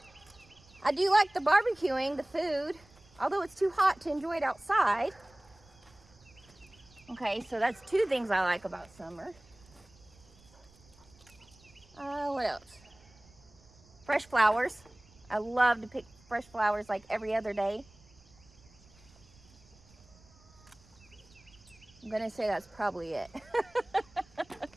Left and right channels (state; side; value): noise; right; rumble, 26 dB below the sound